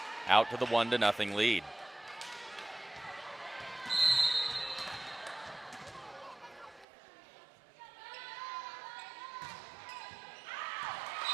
out to the 1-0 lead.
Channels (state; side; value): drops out; left; at 6.9 s